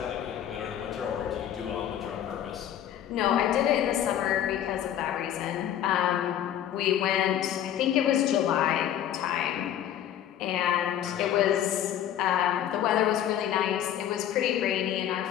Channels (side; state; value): right; quieter; 10.8 dB